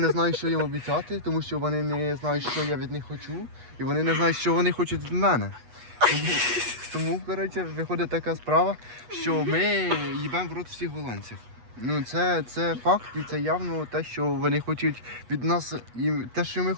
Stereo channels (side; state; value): left; late; 8.2 ms